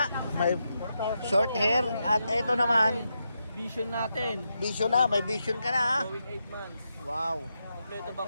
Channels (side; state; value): both; inverted; correlation -0.85